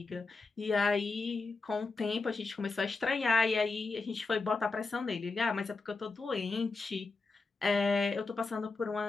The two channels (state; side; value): quieter; right; 3.9 dB